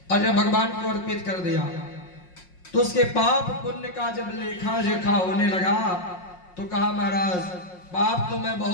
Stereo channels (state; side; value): late; right; 5.5 ms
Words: और जब भगवान को अर्पित कर दिया तो उसके पाप पुण्य का जब लेखा जोखा होने लगा तो कहा महाराज पाप तो मैं